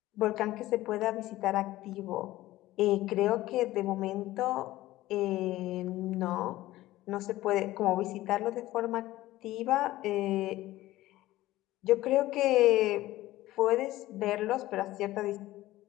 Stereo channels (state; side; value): quieter; right; 16.4 dB